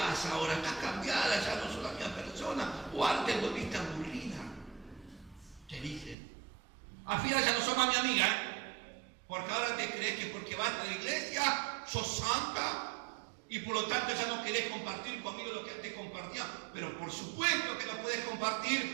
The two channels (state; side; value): drops out; left; at 6.2 s